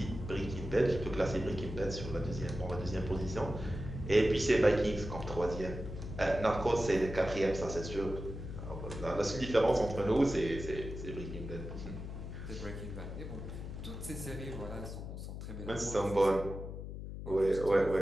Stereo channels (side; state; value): left; noise; hum, 8 dB below the sound